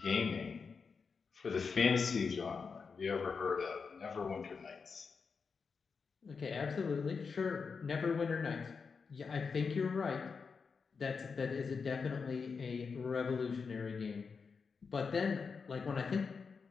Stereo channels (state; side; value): quieter; right; 5.3 dB